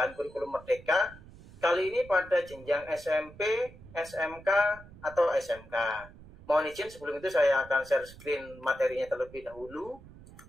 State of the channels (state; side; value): noise; right; rumble, 19 dB below the sound